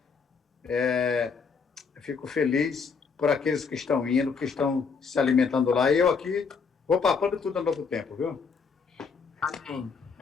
eu fico feliz por aqueles que estão indo, que estão se alimentando lá. E eu aqui vou papando tudo ao novo tempo, viu? Amém.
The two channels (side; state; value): right; quieter; 5.4 dB